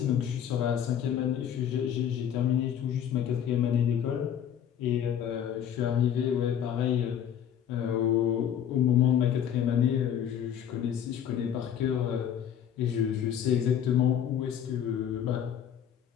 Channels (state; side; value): quieter; right; 9.3 dB